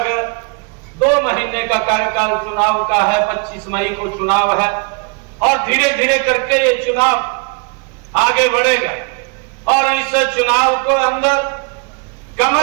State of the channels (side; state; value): left; quieter; 32.7 dB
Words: 2 महीने का कार्यकाल चुनाव का है, 25 मई को चुनाव है और धीरे धीरे करके ये चुनाव आगे बढ़ेगा और इस चुनाव को अंदर